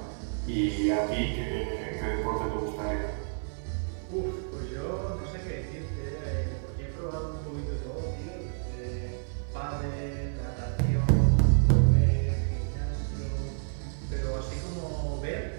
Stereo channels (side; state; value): left; silent; 58 dB below the other